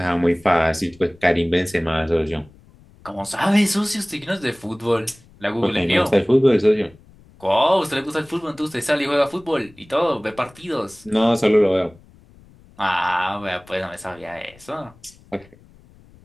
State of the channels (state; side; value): noise; left; rumble, 26 dB below the sound